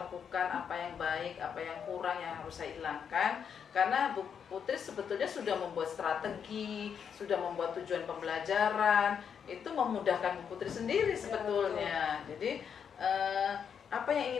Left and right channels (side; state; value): right; quieter; 7.4 dB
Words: apa yang baik, apa yang kurang yang harus saya hilangkan. Karena Bu Putri sebetulnya sudah membuat strategi, sudah membuat tujuan pembelajaran, itu memudahkan Bu Putri sendiri sebetulnya. Jadi apa yang